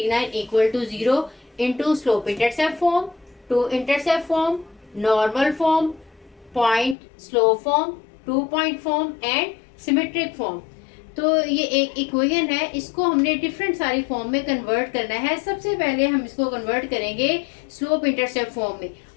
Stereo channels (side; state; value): right; drops out; at 7.0 s